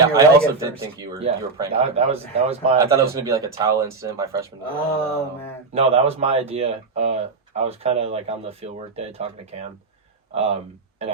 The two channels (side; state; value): left; quieter; 4.2 dB